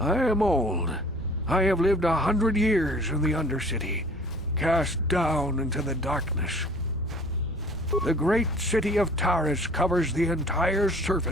I am old. I have lived 100 years in the Undercity, cast down into the darkness. The great city of Taris covers the entire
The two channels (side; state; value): both; normal; correlation 0.50